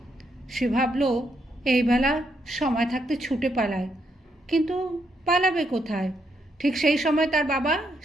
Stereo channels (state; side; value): normal; both; correlation 0.77